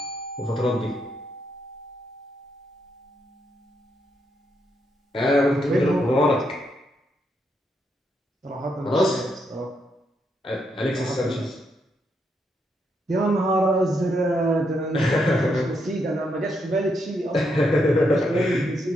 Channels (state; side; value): normal; both; correlation 0.79